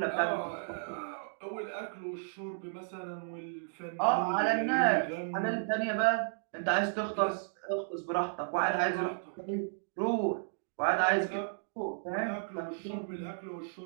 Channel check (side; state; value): left; silent; digital silence